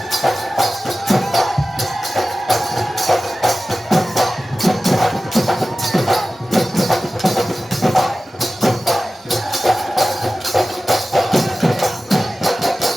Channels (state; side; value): normal; both; correlation 0.95